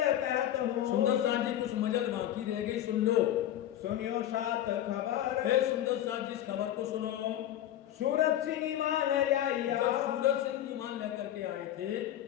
कहत हूँ, सुंदर साथ जी कुछ मजल बाकी रह गई, सुन लो। सुनियो सात खबर, हे सुंदर साथ जी इस खबर को सुनो। सूरत सिंह ईमान लाइया, जब सूरज सिंह ईमान लेकर के आए थे,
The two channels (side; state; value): right; quieter; 12.0 dB